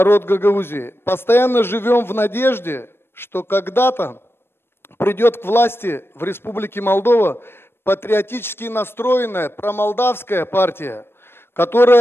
Гагаузии, постоянно живем в надежде, что когда-то придет к власти в Республике Молдова патриотически настроенная промолдавская партия,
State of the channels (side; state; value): right; late; 0.11 ms